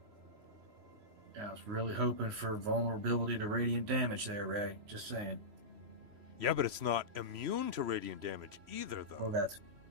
Yeah, I was really hoping for vulnerability to radiant damage there, Ray. Just saying. Yeah, but it's not immune to radiant damage either, though. That's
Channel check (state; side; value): late; left; 3.0 ms